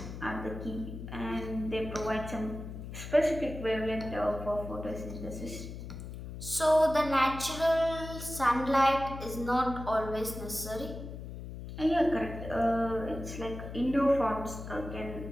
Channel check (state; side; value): noise; left; hum, 9 dB below the sound